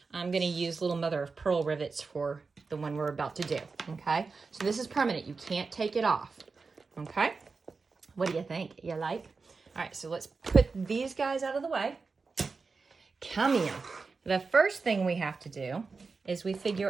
I'm going to use little mother of pearl rivets for the one we're about to do, okay? So this is permanent. You can't take it off, okay? What do you think? You like? All right, so let's put these guys out of the way. Come here. The first thing we have to do is we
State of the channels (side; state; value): left; quieter; 4.5 dB